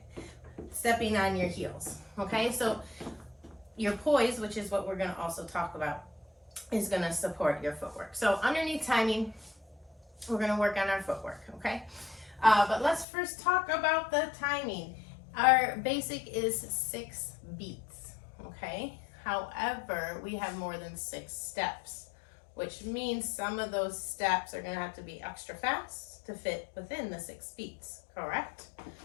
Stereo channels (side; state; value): right; drops out; at 13.1 s